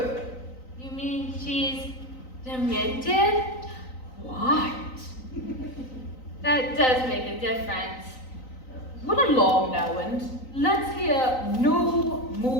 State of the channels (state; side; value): late; right; 3.9 ms